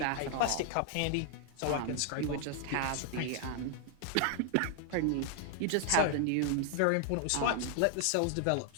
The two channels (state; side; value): different; both; correlation 0.00